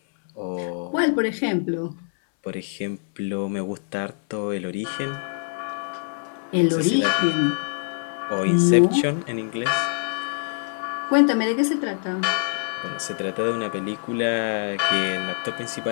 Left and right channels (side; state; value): right; silent; 62 dB below the other